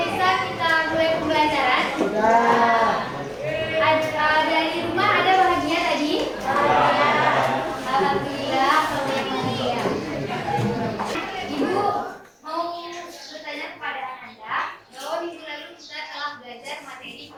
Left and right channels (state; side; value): identical; both; correlation 1.00